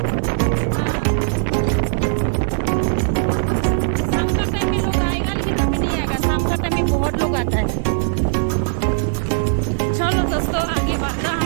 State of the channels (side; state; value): left; silent; 56 dB below the other